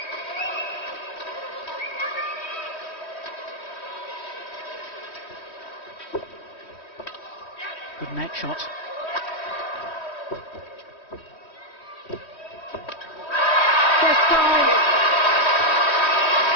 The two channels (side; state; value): right; late; 3.1 ms